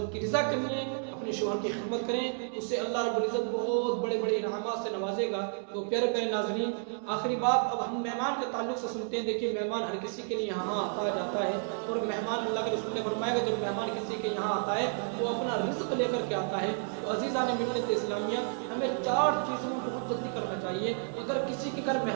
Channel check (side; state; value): left; silent; 57 dB below the other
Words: کی رضا کے لیے اپنے شوہر کی خدمت کریں. اس سے اللہ رب العزت بہت بڑے بڑے انعامات سے نوازے گا. تو پیارے پیارے ناظرین آخری بات اب ہم مہمان کے تعلق سے سنتے ہیں. دیکھیے مہمان ہر کسی کے لیے یہاں آتا جاتا ہے اور مہمان اللہ کے رسول نے فرمایا کہ جب مہمان کسی کے یہاں آتا ہے تو اپنا رزق لے کر کے آتا ہے. تو عزیزان ملت اسلامیہ ہمیں 4 چیزوں میں بہت جلدی کرنا چاہیے. اگر کسی کے گھر